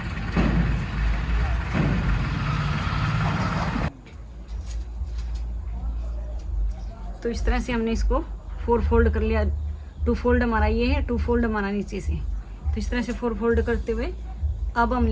तो इस तरह से हमने इसको 4 फोल्ड कर लिया। 2 फोल्ड हमारा ये है, 2 फोल्ड हमारा नीचे से। तो इस तरह से 4 फोल्ड करते हुए अब हम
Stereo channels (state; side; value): identical; both; correlation 1.00